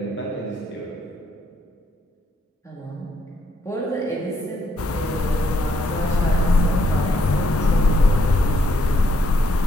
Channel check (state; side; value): normal; both; correlation 0.74